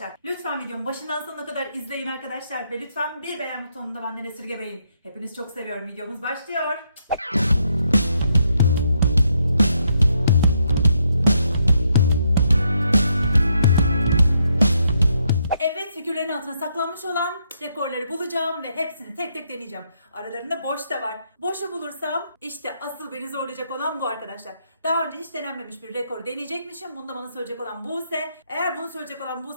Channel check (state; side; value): inverted; both; correlation -0.76